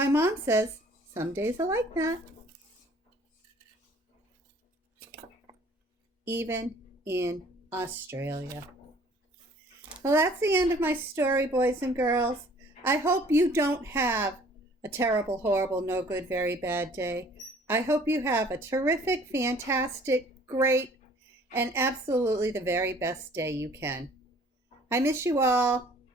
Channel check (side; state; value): both; normal; correlation 0.54